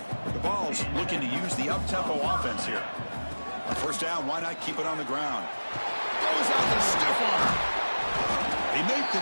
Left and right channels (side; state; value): both; inverted; correlation -1.00